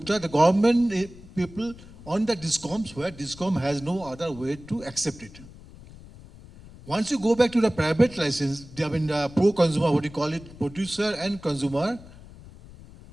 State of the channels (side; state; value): left; noise; rumble, 19 dB below the sound